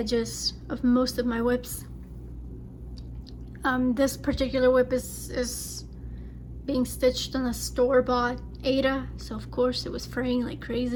of most of my whips. This particular whip is being stitched on a store-bought Ada, so of course it was fraying like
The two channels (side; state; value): both; identical; correlation 1.00